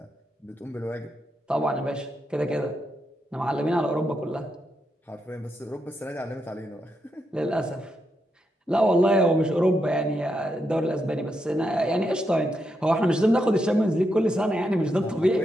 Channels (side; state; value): both; normal; correlation 0.83